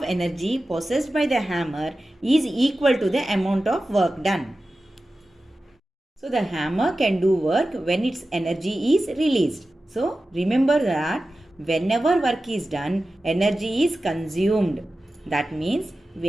energy possessed by the hammer is equal to the amount of work done. So the hammer can do work when its energy is released. So remember that whenever work is done, energy is consumed. That means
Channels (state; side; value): normal; both; correlation 0.94